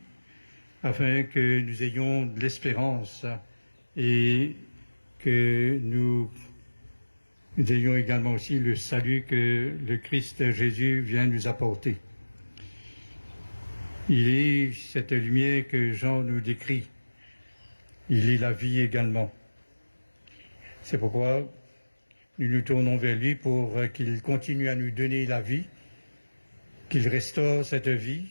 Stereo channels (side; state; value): both; inverted; correlation -1.00